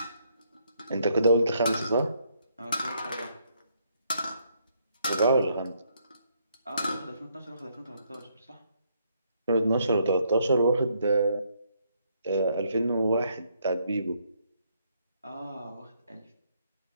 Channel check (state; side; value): inverted; both; correlation -0.72